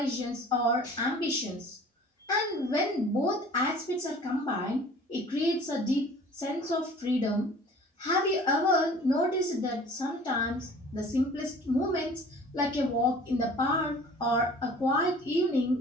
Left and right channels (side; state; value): both; normal; correlation 0.47